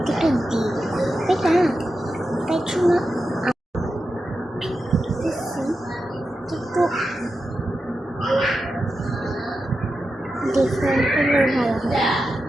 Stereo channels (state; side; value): normal; both; correlation 0.90